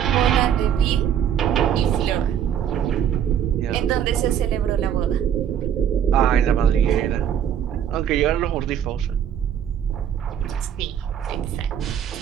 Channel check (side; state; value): left; quieter; 9.3 dB